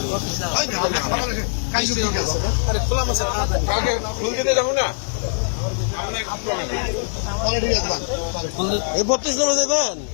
আরে খোলা মাছে কালকে ফুল দিতে যাবো না, ঠিক আছে, এই 32 নম্বর দেবেন।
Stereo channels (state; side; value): silent; right; 64 dB below the other